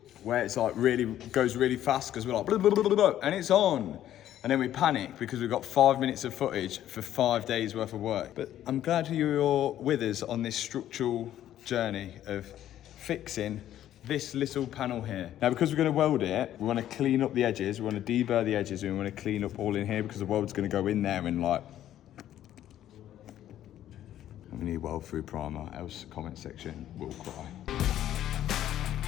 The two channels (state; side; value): quieter; right; 12.0 dB